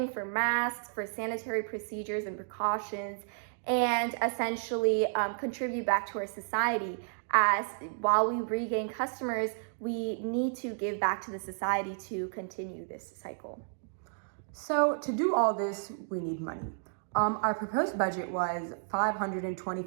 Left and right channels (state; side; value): silent; left; digital silence